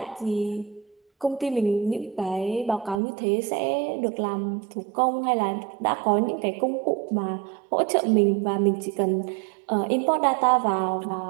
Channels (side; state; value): left; drops out; at 3.0 s